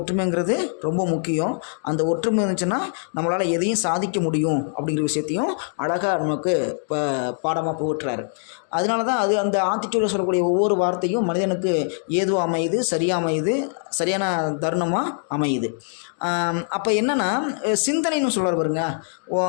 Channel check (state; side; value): silent; right; digital silence